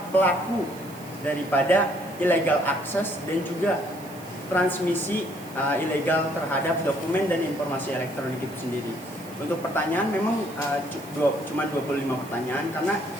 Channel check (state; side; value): noise; right; hiss, 20 dB below the sound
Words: pelaku daripada illegal access dan juga transmisi ilegal terhadap dokumen dan informasi elektronik itu sendiri. Untuk pertanyaan memang cuma 25 pertanyaan, karena